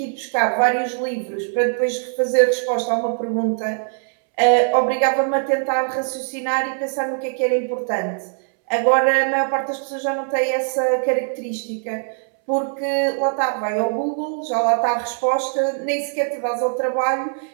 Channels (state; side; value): silent; left; 65 dB below the other